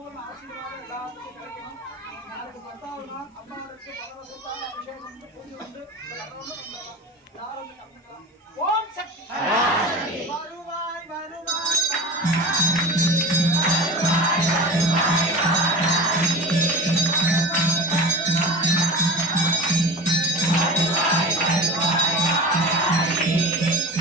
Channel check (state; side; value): normal; both; correlation 0.33